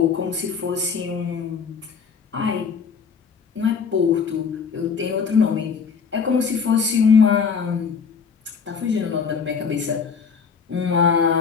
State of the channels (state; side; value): quieter; right; 6.0 dB